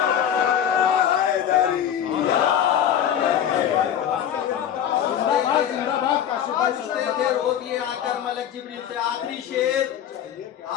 रोज ये आकर मलक जिब्रील से। आखिरी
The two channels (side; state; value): right; quieter; 9.7 dB